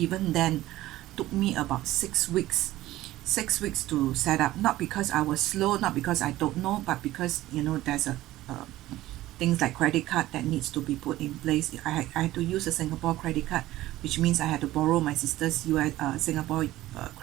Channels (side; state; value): left; quieter; 15.9 dB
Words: then, took me about 6 weeks. 6 weeks to set up, not because I was slow, not because I don't know, but because there's things like credit card that needs to be put in place. I had to use a Singapore credit card, which means I had to borrow my sister's US Singapore